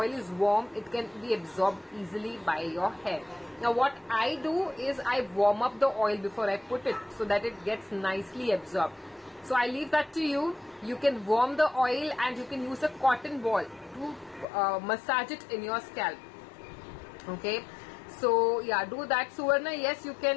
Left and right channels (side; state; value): right; drops out; at 14.5 s